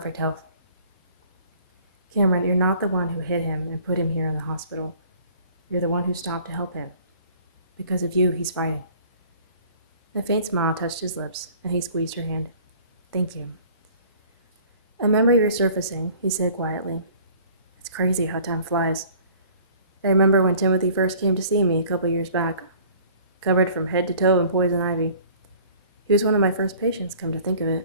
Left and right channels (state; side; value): inverted; both; correlation -0.52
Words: health. Cameron, you're not the one who hit him and put him here in the hospital. You're the one who stopped to help him. Because of you, he's fighting. A faint smile touched his lips, and he squeezed her hand. Thank you. A memory resurfacing, he said quietly. It's crazy how time flies. I remember when Timothy first came to see me a couple years back, covered from head to toe in poison ivy. He was one of my first patients, come to think of